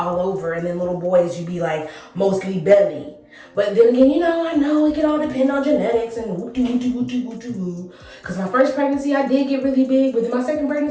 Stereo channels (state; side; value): identical; both; correlation 1.00